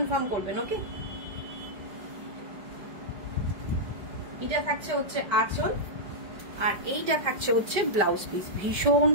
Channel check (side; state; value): left; late; 5.1 ms